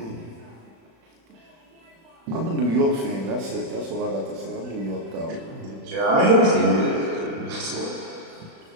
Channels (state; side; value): late; left; 36 ms